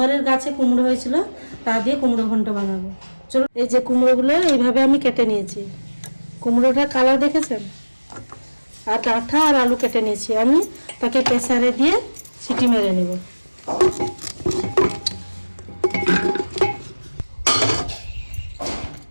গাছে কুমড়ো হয়েছিল, তা দিয়ে কুমড়ো ঘন্ট বানাবো। চলুন, এই যে কুমড়োগুলো এইভাবে আমি কেটে নিয়েছি। কুমড়োটা কালার দেখেছেন, আর ডাঁটা আর আলু কেটে নিয়েছি। আমি তাকে প্রেসারে দিয়ে সিটি মেরে নেব।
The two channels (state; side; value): inverted; both; correlation -1.00